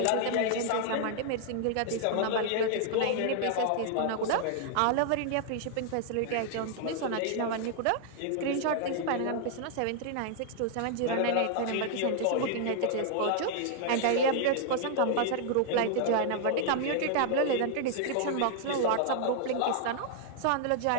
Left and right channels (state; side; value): different; both; correlation 0.00